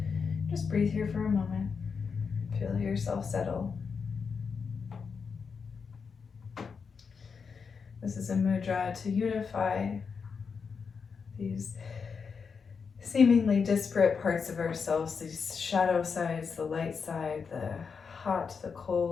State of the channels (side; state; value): right; quieter; 5.7 dB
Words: Just breathe here for a moment. Feel yourself settle. This is a mudra to unify these seemingly disparate parts of ourselves, these shadow sides, the light side, the hot, the